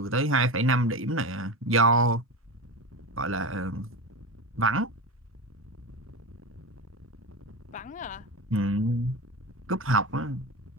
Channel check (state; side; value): normal; both; correlation 0.23